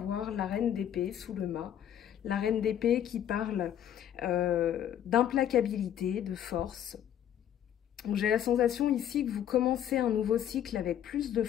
la reine d'épée sous le mât. La reine d'épée qui parle d'implacabilité, de force. J'ai la sensation ici que vous commencez un nouveau cycle avec plus de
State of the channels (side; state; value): right; quieter; 10.4 dB